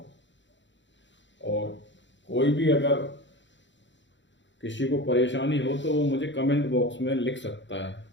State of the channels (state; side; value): late; right; 0.54 ms